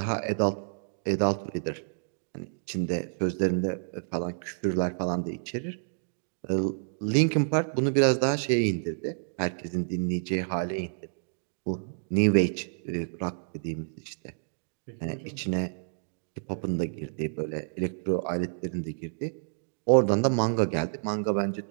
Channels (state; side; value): silent; left; digital silence